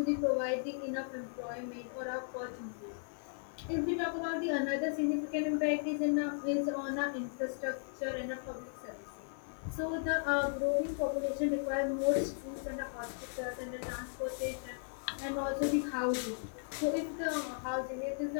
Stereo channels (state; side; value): silent; right; 54 dB below the other